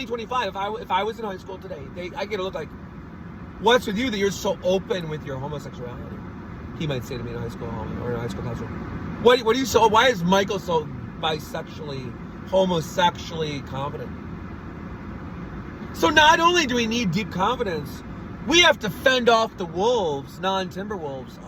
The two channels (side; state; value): both; identical; correlation 1.00